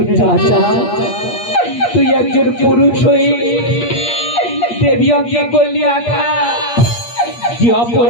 রাজা তুই একজন পুরুষ হয়ে দেবী অঙ্গে করলি আঘাত যে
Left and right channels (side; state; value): right; late; 8.5 ms